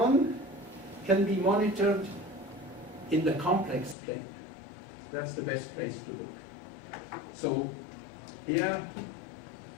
can be monitored in the complex plane. That's the best place to look. So here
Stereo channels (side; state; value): right; drops out; at 4.0 s